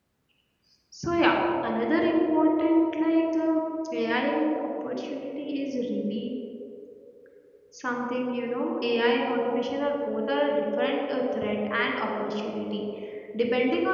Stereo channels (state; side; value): identical; both; correlation 1.00